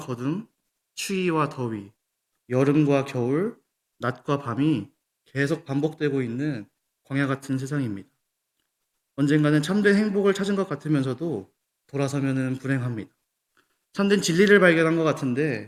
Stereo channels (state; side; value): identical; both; correlation 1.00